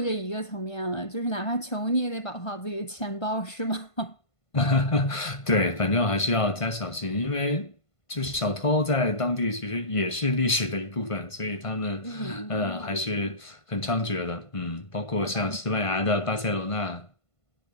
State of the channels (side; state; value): right; late; 1.5 ms